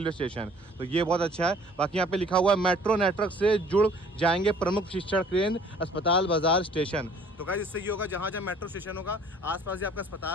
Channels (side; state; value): both; normal; correlation 0.54